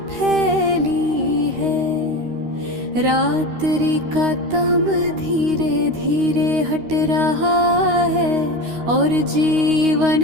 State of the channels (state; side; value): late; left; 13 ms